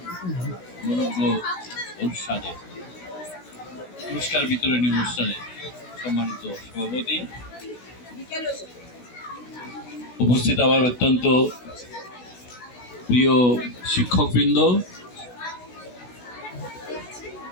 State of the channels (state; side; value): late; right; 16 ms